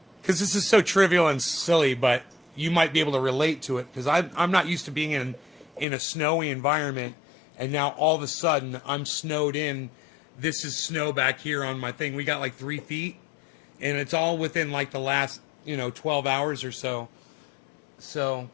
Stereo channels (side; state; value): right; drops out; at 5.9 s